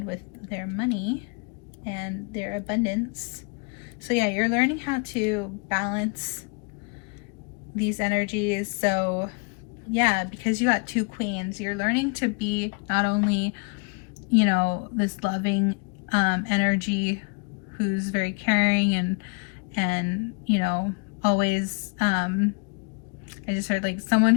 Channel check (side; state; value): right; quieter; 34.8 dB